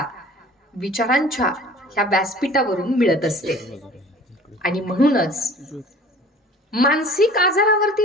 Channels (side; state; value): both; normal; correlation 0.46